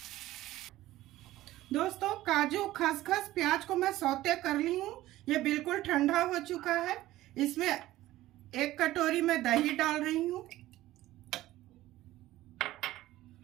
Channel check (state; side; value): quieter; left; 15.8 dB